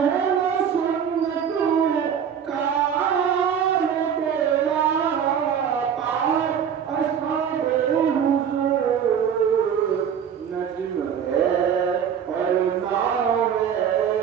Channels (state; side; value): quieter; left; 8.1 dB